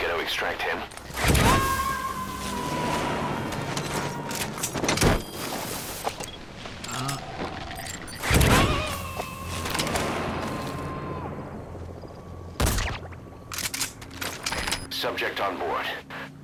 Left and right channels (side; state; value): both; identical; correlation 1.00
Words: Extract him. Subject on board.